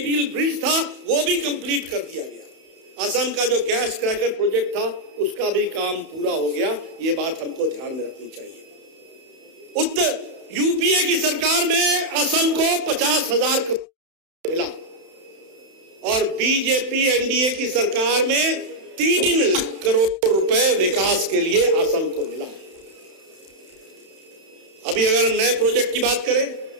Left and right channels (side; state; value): left; late; 31 ms